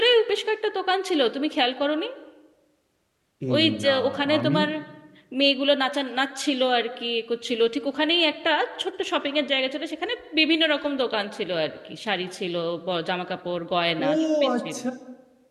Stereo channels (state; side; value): identical; both; correlation 1.00